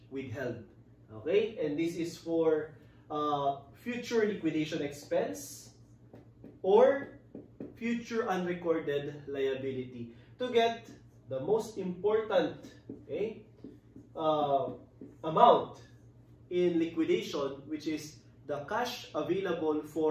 withheld. Okay? And this is for future liquidation expense or future unrecorded liability, to get the most important, okay, amount in liquidation, which is the cash available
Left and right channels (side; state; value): both; identical; correlation 1.00